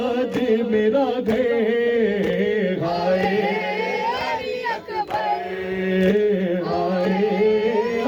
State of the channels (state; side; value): identical; both; correlation 1.00